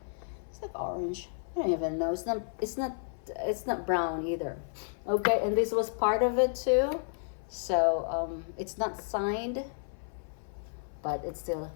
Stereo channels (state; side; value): silent; right; 56 dB below the other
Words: It's like orange. I don't even know. It's not brown either. Okay, and this was part of it too. So it's not signed, but it's still